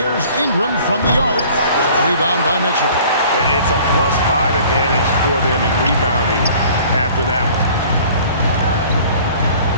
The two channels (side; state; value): both; inverted; correlation -0.50